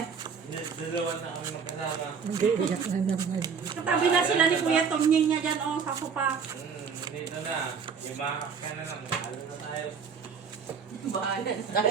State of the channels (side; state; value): left; quieter; 6.1 dB